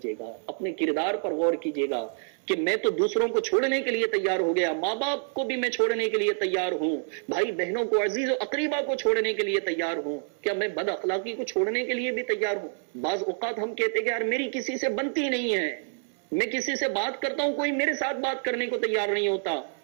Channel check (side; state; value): left; silent; 60 dB below the other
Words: अपने किरदार पर गौर कीजिएगा कि मैं तो दूसरों को छोड़ने के लिए तैयार हो गया, माँ बाप को भी मैं छोड़ने के लिए तैयार हूं, भाई बहनों को, अजीज और अकरीबा को छोड़ने के लिए तैयार हूं, क्या मैं बद अखलाकी को छोड़ने के लिए भी तैयार हूं? बाज औकात हम कहते हैं कि यार मेरी किसी से बनती नहीं है, मैं किसी से बात करता हूं कोई मेरे साथ बात करने को तैयार नहीं होता,